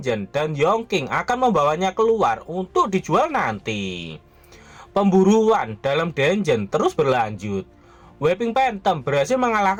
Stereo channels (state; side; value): identical; both; correlation 1.00